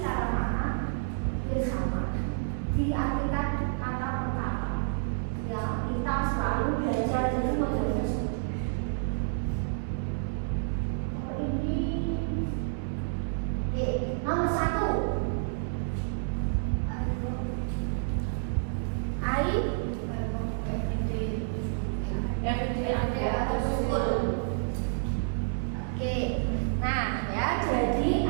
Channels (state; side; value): silent; left; digital silence